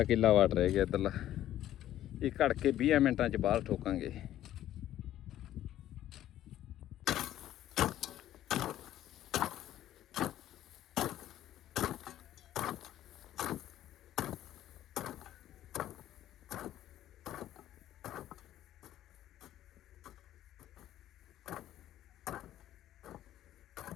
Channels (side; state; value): right; quieter; 12.6 dB